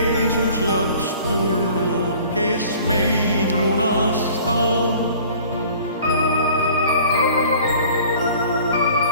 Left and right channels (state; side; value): inverted; both; correlation -0.50